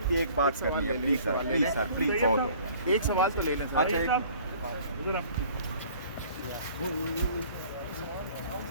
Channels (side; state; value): both; inverted; correlation -0.52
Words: کی ایک بات کرنی ہے please sir, please sir, please. بہت ہوگا. ایک سوال تو لے لیں سر. اچھا